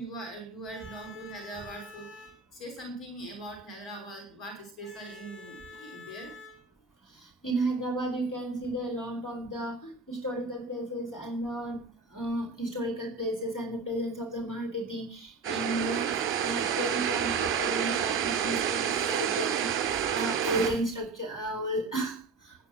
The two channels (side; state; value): left; quieter; 4.0 dB